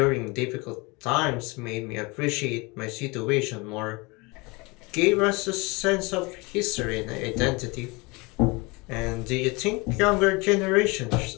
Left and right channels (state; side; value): quieter; right; 26.2 dB